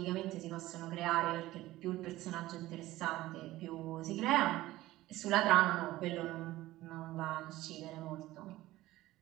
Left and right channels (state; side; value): quieter; left; 16.8 dB